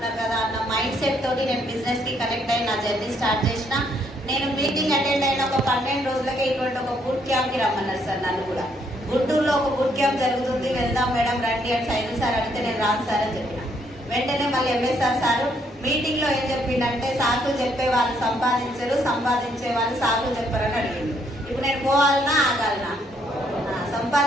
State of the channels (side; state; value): both; normal; correlation 0.71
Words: కదా అన్న మైండ్ సెట్ తోటి నేను బిజినెస్ కి కనెక్ట్ అయ్యి నా జర్నీ స్టార్ట్ చేసిన. నేను మీటింగ్ అటెండ్ అయిన ఒక 12 రోజులకే ఇటువంటి ఒక బూట్ క్యాంప్ కి రమ్మన్నారు సార్ నన్ను కూడా. గుంటూరులో ఒక బూట్ క్యాంప్ జరుగుతుంది, వెళ్దాం మేడం రండి అని సైదు సార్ అడిగితే నేను రాను సార్ అని చెప్పిన. వెంటనే మళ్ళీ ఎంఎస్ఆర్ సార్ మీటింగ్ లో ఏం చెప్పిండంటే, సాకులు చెప్పే వాళ్ళు సంపాదించరు, సంపాదించే వాళ్ళు సాకులు చెప్పారని అడిగిండు. ఇప్పుడు నేను పోవాలన్నా ఆగాలనా?